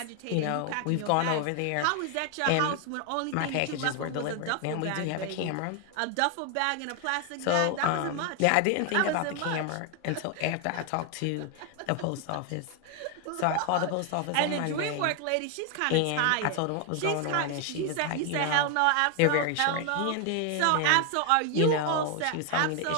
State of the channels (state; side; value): different; both; correlation 0.01